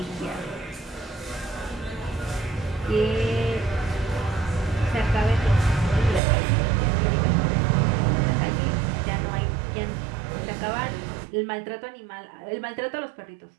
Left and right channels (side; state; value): left; drops out; at 6.2 s